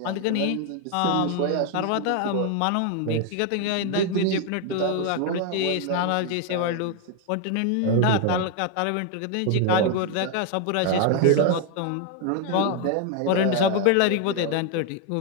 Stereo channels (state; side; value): different; both; correlation 0.01